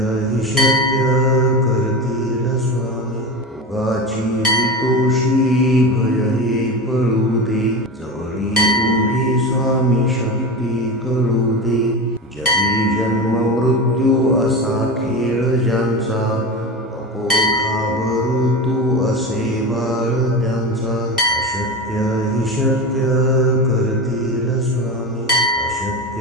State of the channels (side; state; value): both; normal; correlation 0.24